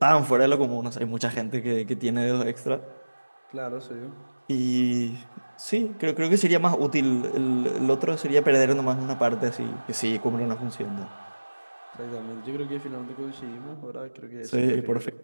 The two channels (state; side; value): inverted; both; correlation -1.00